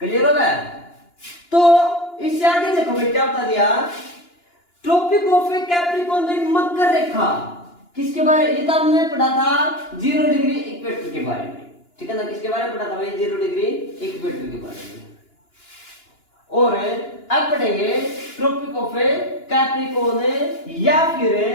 होगा। तो इससे आगे देखो मैं क्या बता दिया, ट्रॉपिक ऑफ कैप्रिकॉर्न में मकर रेखा किसके बारे में, ये तो हमने पढ़ा था 0 डिग्री इक्वेटर के बारे में, ठीक है ना। किसके बारे में पढ़ा था भाई, 0 डिग्री इक्वेटर के बारे में। और अब पढ़ेंगे ट्रॉपिक ऑफ कैप्रिकॉर्न या फिर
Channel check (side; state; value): right; late; 2.9 ms